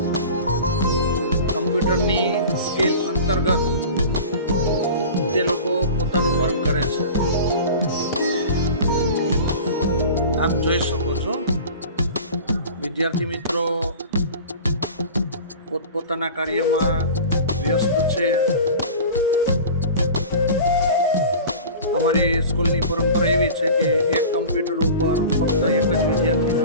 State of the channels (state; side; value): inverted; both; correlation -0.37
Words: કમ્પ્યુટરની સ્કિલ અંતર્ગત તે લોકો પોતાનું વર્ક કરે છે. આપ જોઈ શકો છો વિદ્યાર્થી મિત્રો પોતપોતાના કાર્યમાં વ્યસ્ત છે. અમારી સ્કૂલની પરંપરા એવી છે કે એક કમ્પ્યુટર ઉપર ફક્ત એક જ વિદ્યાર્થીને